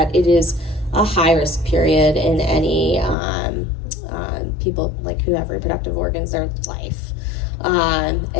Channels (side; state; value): right; drops out; at 3.2 s